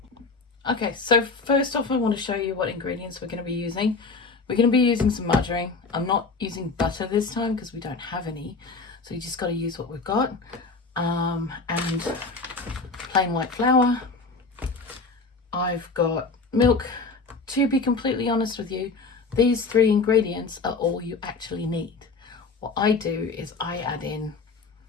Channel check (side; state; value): right; quieter; 4.1 dB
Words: Okay, so first off I want to show you what ingredients we're going to be using. We're going to be using some margarine. I'm not using butter this time because we don't have any. So you just got to use what we've got. And plain white flour. I've got milk. To be completely honest with you, these three ingredients are all you actually need. What I do is I add in